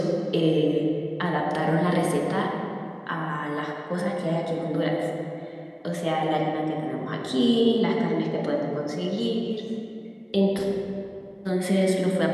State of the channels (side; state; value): both; identical; correlation 1.00